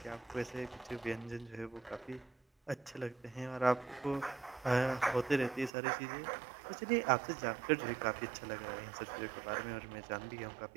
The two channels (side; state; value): left; drops out; at 5.7 s